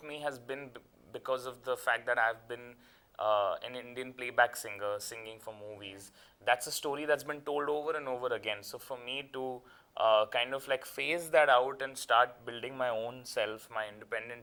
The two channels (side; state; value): both; identical; correlation 1.00